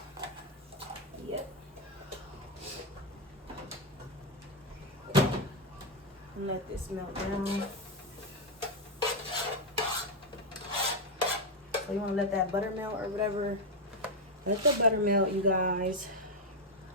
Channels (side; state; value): both; normal; correlation 0.04